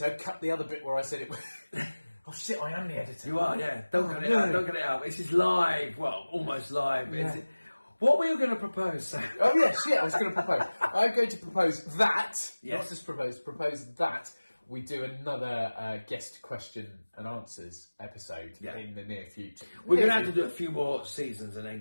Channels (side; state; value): both; inverted; correlation -1.00